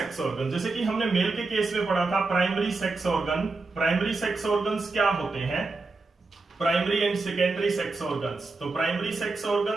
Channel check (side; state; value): left; quieter; 3.7 dB